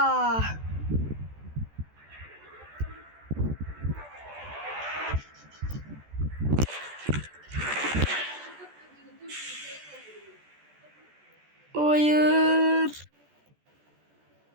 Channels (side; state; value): left; late; 14 ms